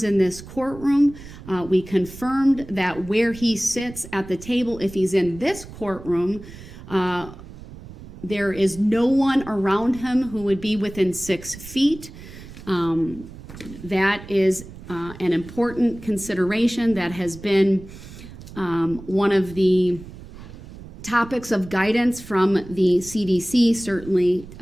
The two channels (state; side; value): noise; right; rumble, 16 dB below the sound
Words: in this courtroom. We confirmed that where he sits at the table, if he's in this courtroom, there is no one around him who would be within 6 feet. That is an important consideration that has been one of the topics of guidance from the CDC, certainly